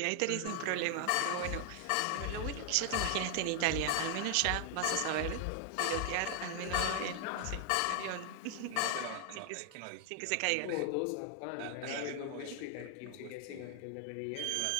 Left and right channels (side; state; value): both; different; correlation 0.00